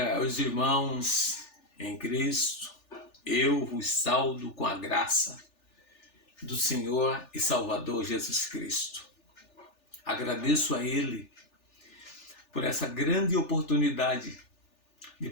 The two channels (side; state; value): right; late; 3.4 ms